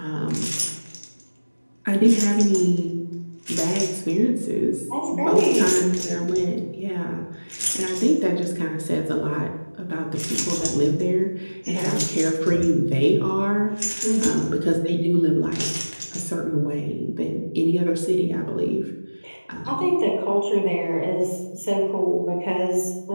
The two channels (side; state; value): both; inverted; correlation -1.00